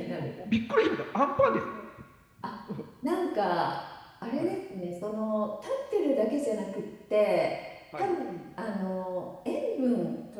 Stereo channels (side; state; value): both; identical; correlation 1.00